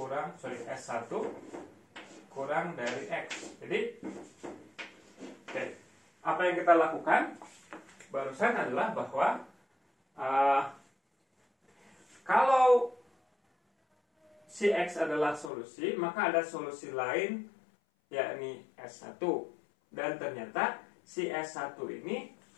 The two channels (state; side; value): drops out; right; at 15.5 s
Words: S1 kurang dari X. Jadi apa yang kita lakukan barusan adalah bahwa kalau si X adalah solusi, maka ada solusi lain, yakni S1. Dan ternyata si S1 ini